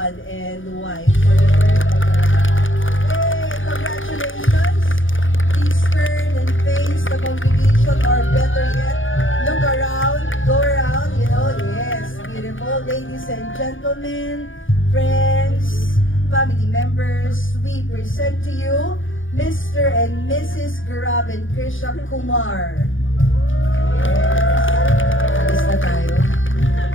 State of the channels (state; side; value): late; right; 0.57 ms